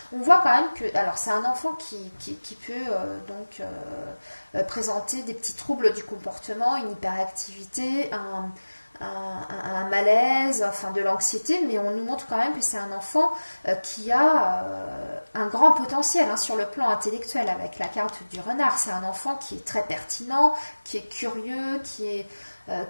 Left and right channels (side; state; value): both; inverted; correlation -1.00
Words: on voit quand même que, alors c'est un enfant qui peut présenter des petits troubles du comportement, une hyperactivité, un malaise, enfin de l'anxiété, mais on nous montre quand même que c'est un enfant qui a un grand potentiel hein, sur le plan intellectuel avec la carte du renard. C'est un enfant qui est très pertinent, qui est curieux, qui